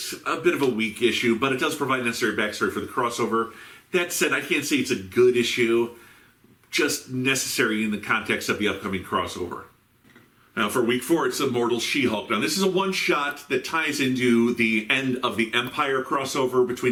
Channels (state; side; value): identical; both; correlation 1.00